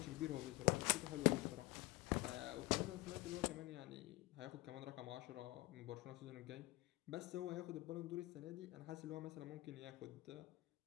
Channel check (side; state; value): right; quieter; 20.5 dB